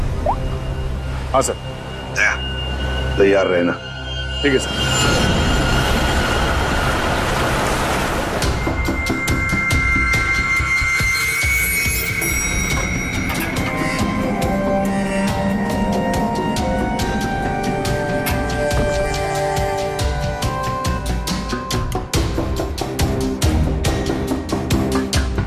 हाँ सर। दया, तैयार रहना। ठीक है सर।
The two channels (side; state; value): both; identical; correlation 1.00